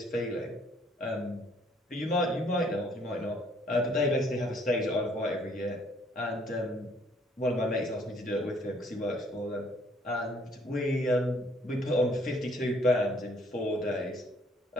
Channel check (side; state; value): both; normal; correlation 0.63